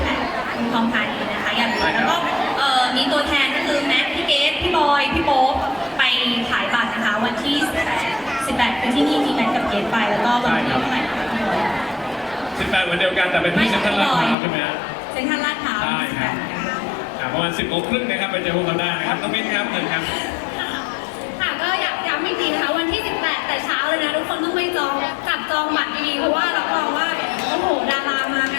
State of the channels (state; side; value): drops out; right; at 14.4 s